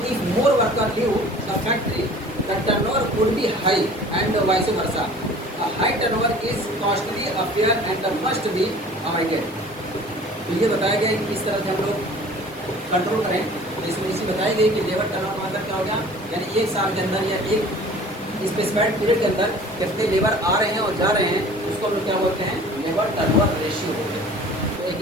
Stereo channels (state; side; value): normal; both; correlation 0.46